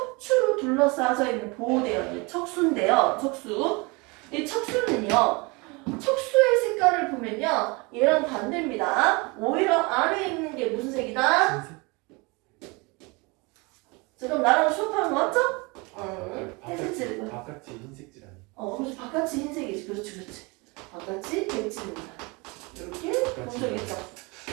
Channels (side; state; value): left; quieter; 27.5 dB